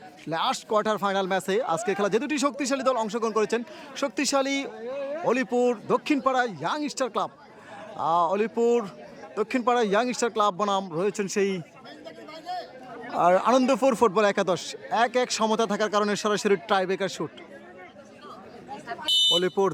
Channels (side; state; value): both; identical; correlation 1.00